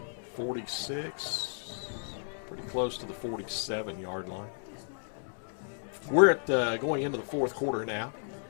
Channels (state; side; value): silent; right; digital silence